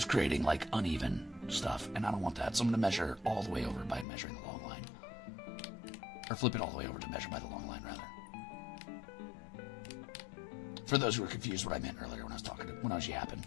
creating like uneven stuff, and I don't want that. So I'm going to measure all the way over by measuring the long line. Or flip it all the way over to measure by the long line, rather. For those who were confused what I meant earlier when I was yapping.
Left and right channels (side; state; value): right; drops out; at 4.0 s